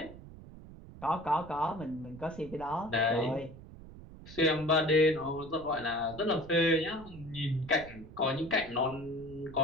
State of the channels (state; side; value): noise; right; rumble, 16 dB below the sound